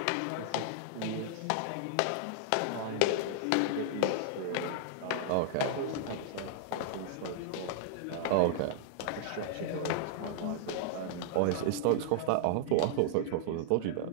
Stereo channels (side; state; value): both; different; correlation -0.01